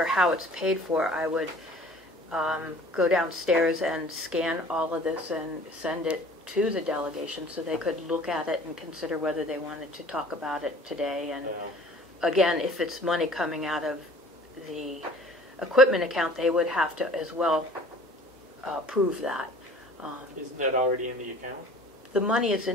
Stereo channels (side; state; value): both; normal; correlation 0.48